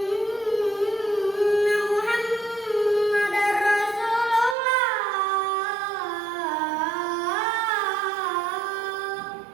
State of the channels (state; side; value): drops out; left; at 4.5 s